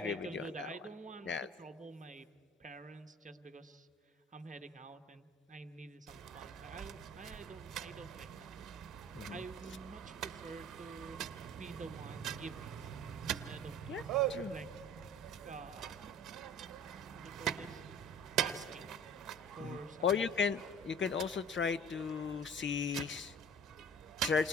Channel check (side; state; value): both; normal; correlation 0.44